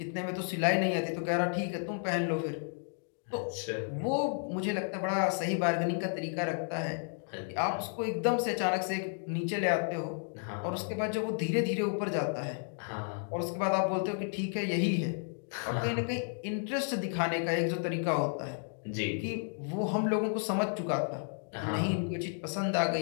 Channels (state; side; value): silent; right; 56 dB below the other